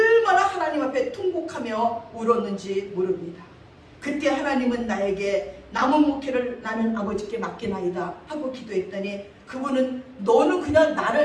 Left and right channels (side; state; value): both; identical; correlation 1.00